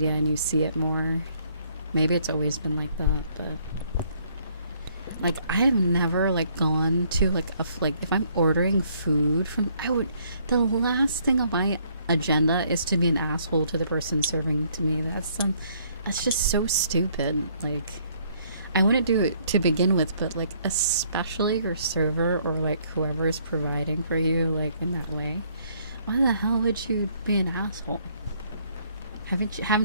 and you see it more. Maybe it's always been like that, but like I have never like gone to like like if I'm ordering food from, the last thing on my agenda is to be an asshole to the person serving to me. That's just so stupid. Like, I wouldn't do it to begin with, but like especially your server or like whoever is providing for you, like in that way, why the hell would you be an asshole?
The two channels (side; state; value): both; inverted; correlation -0.66